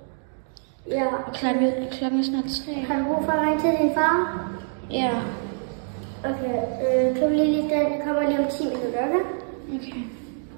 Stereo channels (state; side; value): silent; left; 62 dB below the other